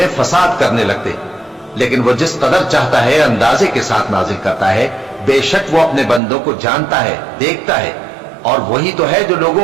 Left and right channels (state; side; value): drops out; left; at 6.2 s